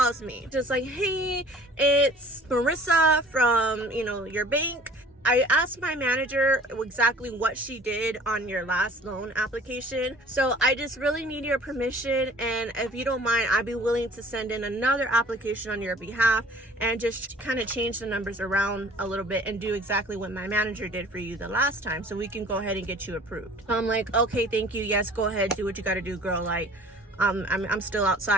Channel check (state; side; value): normal; both; correlation 0.49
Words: me just like, hey, it's Marissa from, your bank. I asked my manager exactly what she did on your last loan application. So I just really need your permission. And if you don't mind, I'd be willing to send in another application on your behalf and just kind of change the numbers around a little bit and do exactly what my manager did for you the last time. So we can go ahead and get you approved. So I'm like, okay, thank you. Yes, go ahead. Do what you got to do, girl. Like, I'm still